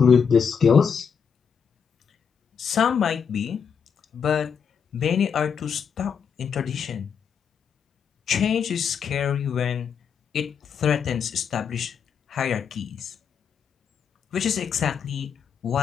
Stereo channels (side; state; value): right; quieter; 6.8 dB